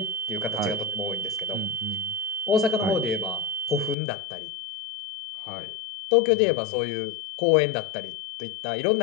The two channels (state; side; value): drops out; right; at 4.0 s